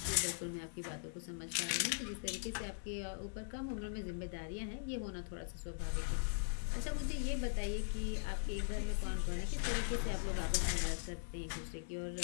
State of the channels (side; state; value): right; silent; digital silence